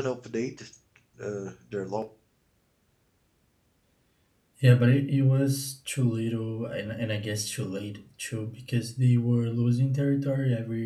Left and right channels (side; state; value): both; identical; correlation 1.00